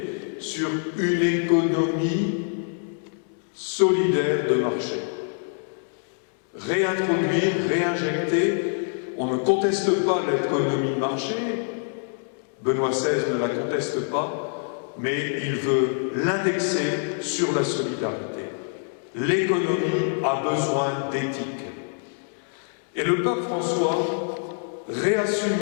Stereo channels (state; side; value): silent; right; 62 dB below the other